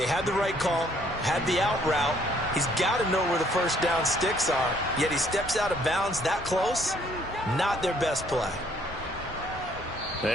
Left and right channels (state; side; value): normal; both; correlation 0.64